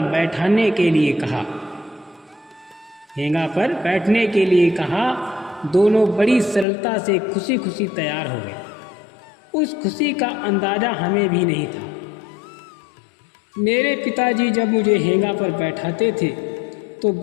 बैठने के लिए कहा। दोनों बड़ी सरलता से खुशी खुशी तैयार हो गए। उस खुशी का अंदाज़ा हमें भी नहीं था। मेरे पिताजी जब मुझे हेंगा पर बैठाते थे तो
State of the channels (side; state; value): right; drops out; at 6.7 s